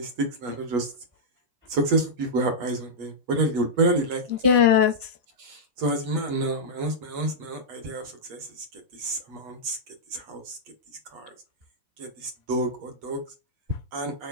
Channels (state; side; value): late; left; 8.3 ms